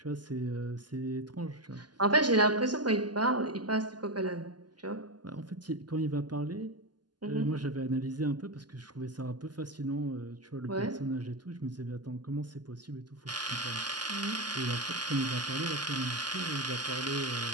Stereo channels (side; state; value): left; late; 0.70 ms